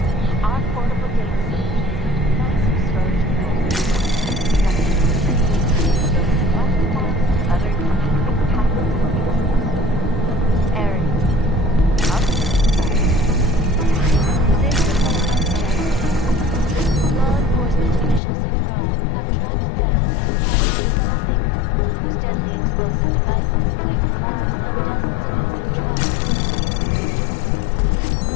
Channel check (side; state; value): right; drops out; at 18.2 s